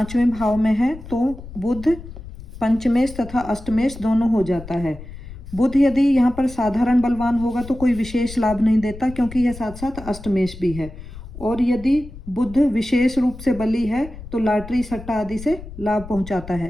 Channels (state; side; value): noise; left; rumble, 14 dB below the sound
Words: भाव में है तो बुध पंचमेश तथा अष्टमेश दोनों हो जाता है। बुध यदि यहाँ पर साधारण बलवान होगा तो कोई विशेष लाभ नहीं देता, क्योंकि यह साथ साथ अष्टमेश भी है। और यदि बुध विशेष रूप से बली है तो लॉटरी सट्टा आदि से लाभ पहुंचाता